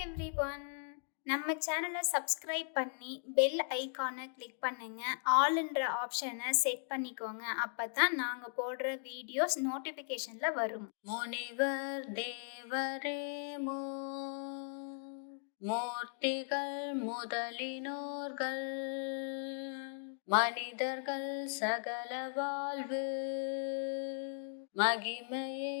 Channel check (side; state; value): right; silent; digital silence